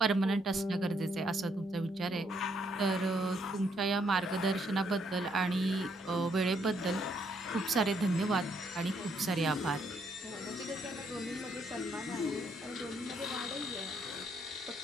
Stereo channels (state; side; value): normal; both; correlation 0.72